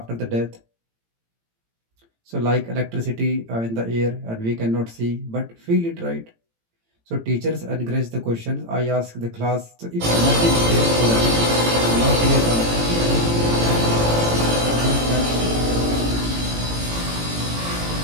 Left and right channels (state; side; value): late; left; 18 ms